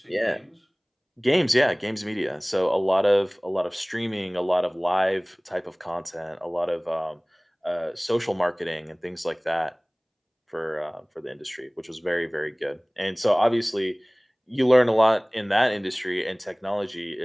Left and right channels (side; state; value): both; identical; correlation 1.00